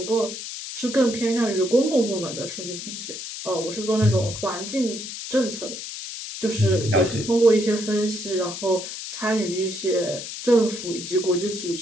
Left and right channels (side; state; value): left; noise; hiss, 8 dB below the sound